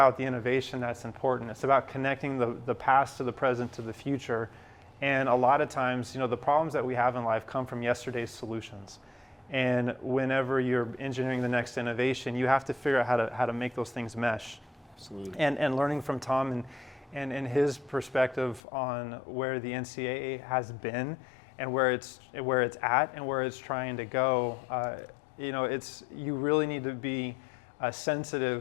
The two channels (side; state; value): right; drops out; at 18.6 s